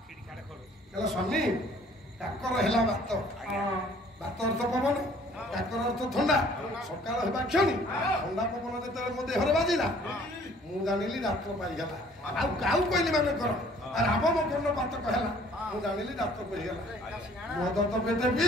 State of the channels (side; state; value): both; normal; correlation 0.56